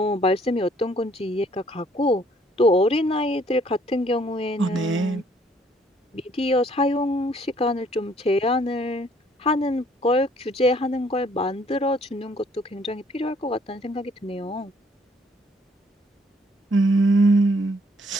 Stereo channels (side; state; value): both; normal; correlation 0.64